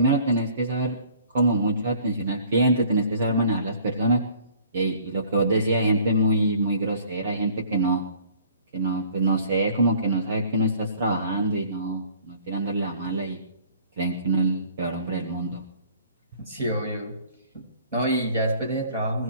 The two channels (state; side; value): inverted; both; correlation -0.53